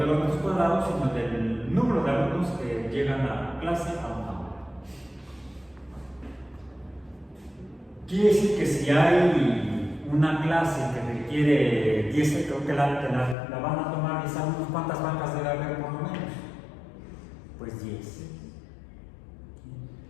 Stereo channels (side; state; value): right; drops out; at 13.4 s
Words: los metros cuadrados, sino del número de alumnos que llegan a clase a un aula. Quiere decir que si hay una clase que requiere 10, creo que la van a tomar 10 alumnos, ¿cuántas bancas debe haber por lo menos? Pues 10.